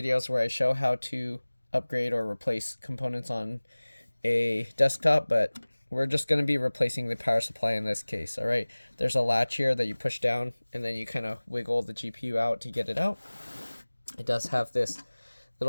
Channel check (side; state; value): both; inverted; correlation -1.00